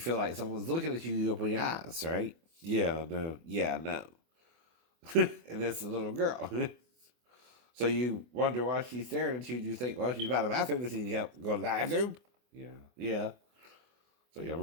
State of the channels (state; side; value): late; left; 24 ms